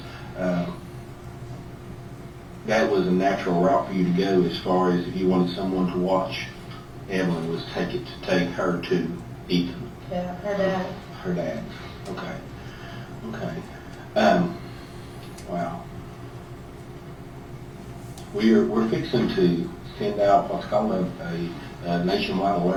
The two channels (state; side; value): identical; both; correlation 1.00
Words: that was a natural route for you to go as far as if you wanted someone to watch Evelyn was take her to Ethan, Yeah, her dad. her dad. Okay. Okay. Wow. We're fixing to send out what's called a nationwide